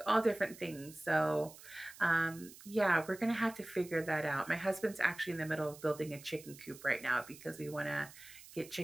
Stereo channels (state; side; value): noise; right; hiss, 18 dB below the sound